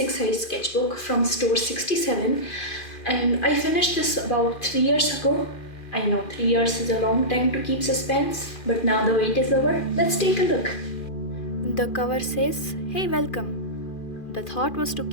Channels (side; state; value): right; late; 2.4 ms